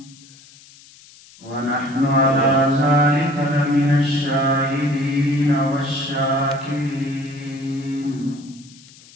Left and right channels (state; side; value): noise; left; hiss, 24 dB below the sound